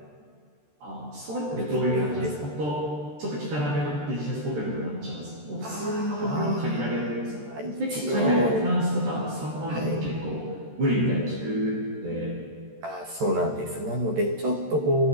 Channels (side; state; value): left; late; 13 ms